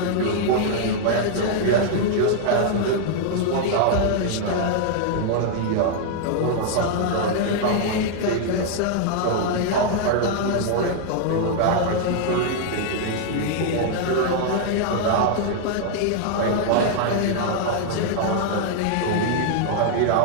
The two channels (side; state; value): both; different; correlation 0.00